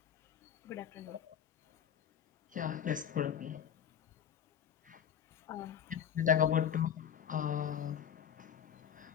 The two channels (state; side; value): quieter; right; 8.8 dB